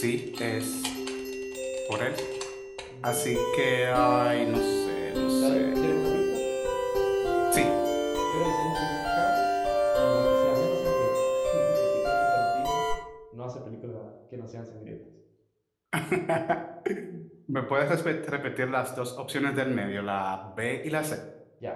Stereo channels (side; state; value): both; identical; correlation 1.00